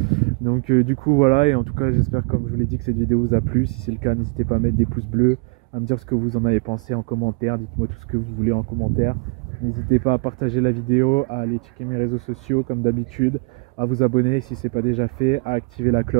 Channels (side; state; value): left; quieter; 33.9 dB